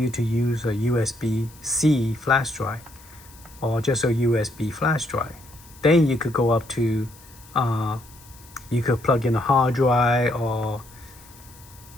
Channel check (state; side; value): noise; left; hiss, 23 dB below the sound